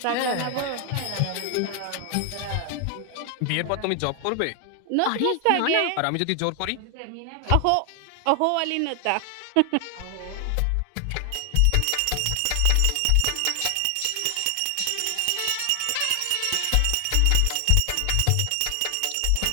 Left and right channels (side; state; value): both; different; correlation 0.00